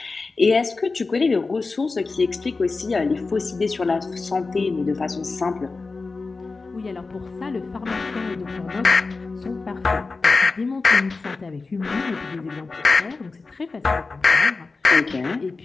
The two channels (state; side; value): quieter; right; 3.9 dB